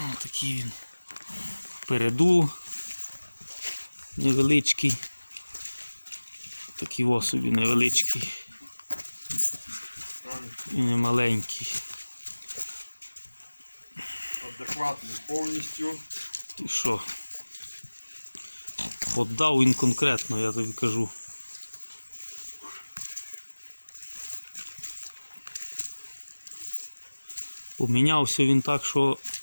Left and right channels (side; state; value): both; inverted; correlation -1.00